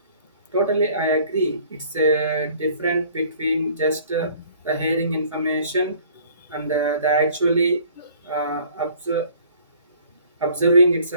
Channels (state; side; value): inverted; both; correlation -0.54